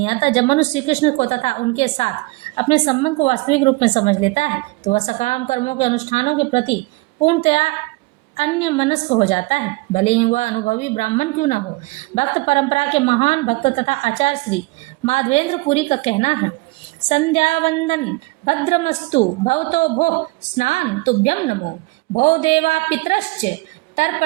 आता। जब मनुष्य श्री कृष्ण को तथा उनके साथ अपने संबंध को वास्तविक रूप में समझ लेता है, तो वह सकाम कर्मों के अनुष्ठानों के प्रति पूर्णतया अन्य मनस्क हो जाता है, भले ही वह अनुभवी ब्राह्मण क्यों न हो। भक्त परंपरा के महान भक्त तथा आचार्य श्री माधवेंद्र पुरी का कहना है, संध्या वंदन भद्रमस्तु भवतो भोः स्नान तुभ्यम नमो भो देवा पितरश्च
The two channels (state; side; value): quieter; left; 23.7 dB